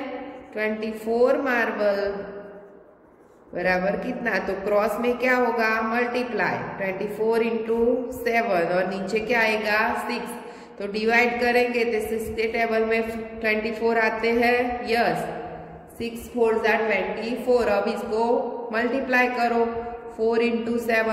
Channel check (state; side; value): identical; both; correlation 1.00